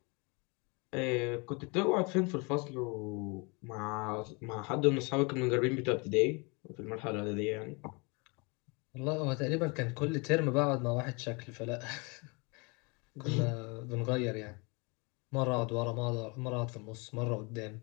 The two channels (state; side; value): quieter; right; 29.9 dB